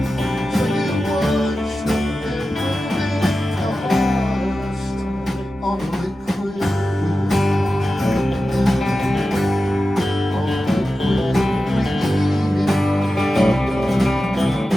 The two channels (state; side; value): noise; right; rumble, 30 dB below the sound